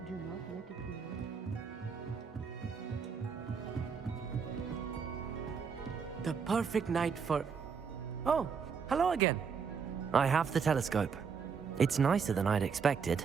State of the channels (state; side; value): quieter; left; 6.0 dB